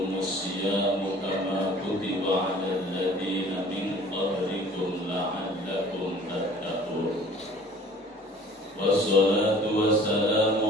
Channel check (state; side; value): normal; both; correlation 0.49